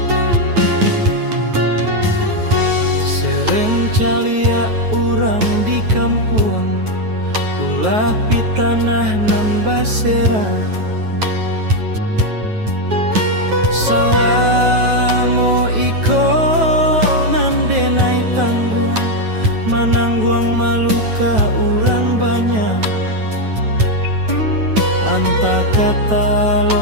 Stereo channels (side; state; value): left; late; 9.3 ms